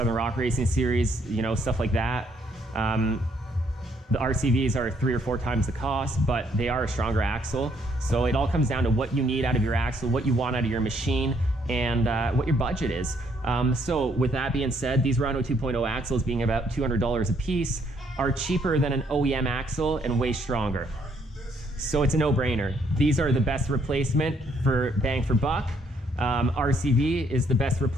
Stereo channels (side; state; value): both; normal; correlation 0.69